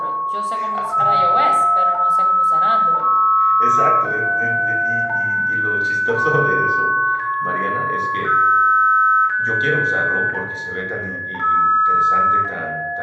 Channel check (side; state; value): both; identical; correlation 1.00